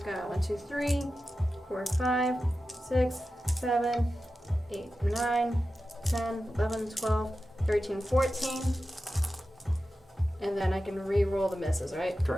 got 1, 2, 3, 4, 5, 6, 7, 8, 9, 10, 11, 12, 13, 14. And then I can re-roll the misses, right?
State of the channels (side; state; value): both; normal; correlation 0.93